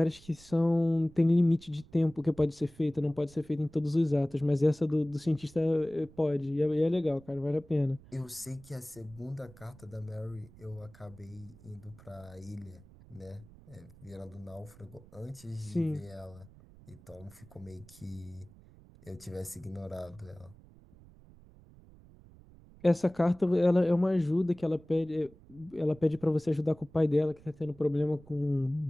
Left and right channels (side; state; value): right; noise; rumble, 23 dB below the sound